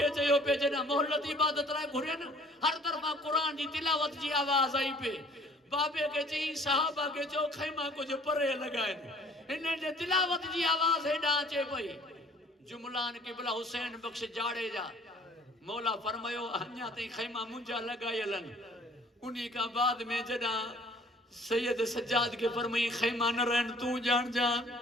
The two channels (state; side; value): normal; both; correlation 0.54